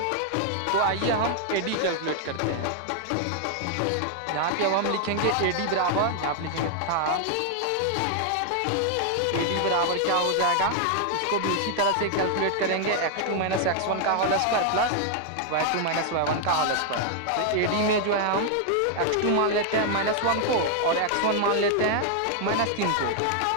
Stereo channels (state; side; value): different; both; correlation 0.00